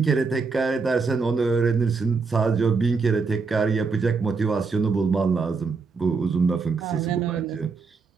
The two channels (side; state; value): left; quieter; 4.6 dB